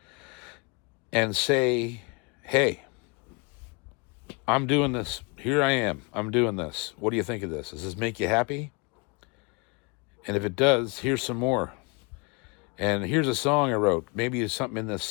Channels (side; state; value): right; quieter; 30.9 dB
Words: and say, hey, I'm doing this. Here I am. I'm doing this. What do you think of this? Does this make you happy? And if it does, here's some more. And here's a song I wrote. Maybe there's something in this